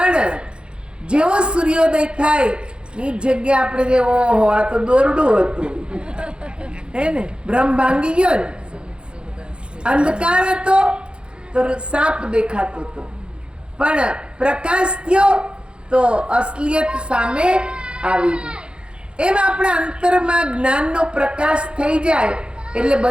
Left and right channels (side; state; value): left; late; 0.054 ms